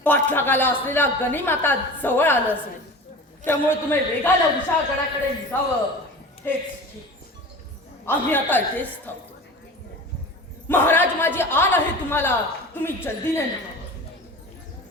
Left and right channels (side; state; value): both; normal; correlation 0.35